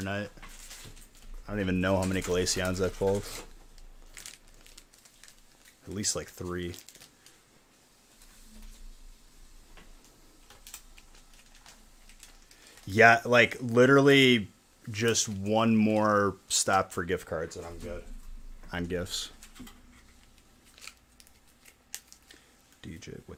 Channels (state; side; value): identical; both; correlation 1.00